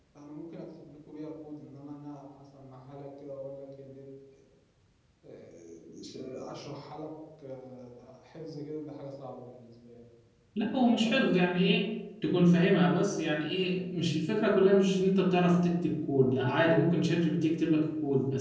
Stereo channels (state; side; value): identical; both; correlation 1.00